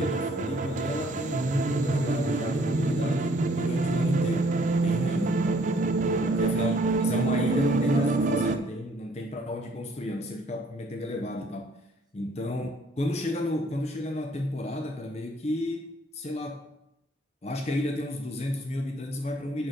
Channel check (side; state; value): both; normal; correlation 0.62